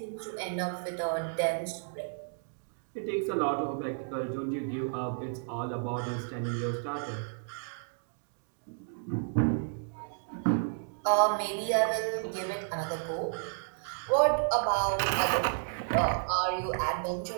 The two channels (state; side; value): silent; left; digital silence